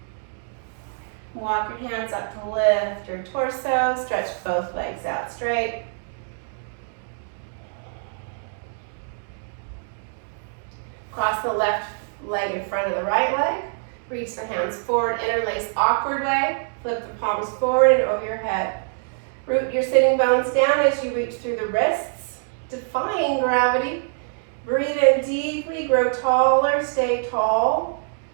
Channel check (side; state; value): left; silent; digital silence